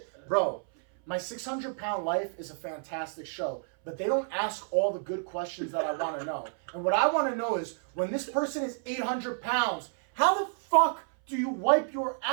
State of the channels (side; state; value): left; silent; 58 dB below the other